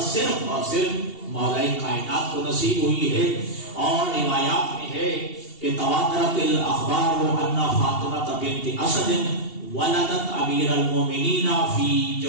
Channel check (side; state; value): right; late; 2.7 ms